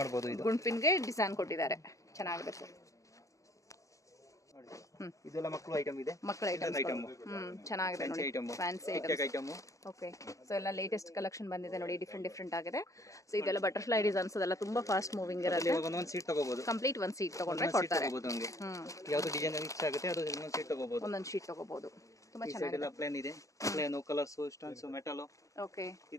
ಮಾಡಬಹುದು. ಇದು ಗುಂಡ್ ಪಿನ್ ಗೆ ಡಿಸೈನ್ ಕೊಟ್ಟಿದ್ದಾರೆ, ಚೆನ್ನಾಗಿದೆ ಸರ್. ಇದೆಲ್ಲ ಮಕ್ಕಳು ಐಟಮ್ ಇದೆ. ಮಕ್ಕಳ ಐಟಮ್ ಚೆನ್ನಾಗಿದೆ ನೋಡಿ, ಫ್ಯಾನ್ಸಿ ಐಟಮ್. ಓಕೆ. ಸೊ ಎಲ್ಲ ಲೇಟೆಸ್ಟ್ ಕಲೆಕ್ಷನ್ ಬಂದಿದೆ ನೋಡಿ, ಡಿಫ್ರೆಂಟ್ ಆಗಿದೆ. ಸೊ ಇದೆಲ್ಲ ಬಟರ್ಫ್ಲೈ ಡಿಸೈನ್ಸ್ ಅದೆಲ್ಲ ತುಂಬಾ ಫಾಸ್ಟ್ ಮೂವಿಂಗ್ ಇರುತ್ತೆ. ಒಂದೊಂದು ಸೀಟ್ ತಗೋಬಹುದು. ಕಂಪ್ಲೀಟ್ ಒಂದು ಸೀಟ್ ತಗೊಂಡ್ರೆ ಕೊಡ್ತಾರೆ. ಯಾವುದು ಡಿಸೈನ್ ಇಷ್ಟ ಆಗುತ್ತೆ ಅದು ಒಂದೊಂದು ಸೀಟ್ ತಗೋಬಹುದು. ಒಂದೊಂದು ಶೀಟ್ ತಗೋಬಹುದು. ತುಂಬಾ ಚೆನ್ನಾಗಿದೆ. ಇದೆಲ್ಲ ಪ್ಲೇನ್ ಇದೆ. Plain colours, stones, metal. Okay.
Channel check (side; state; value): right; late; 0.16 ms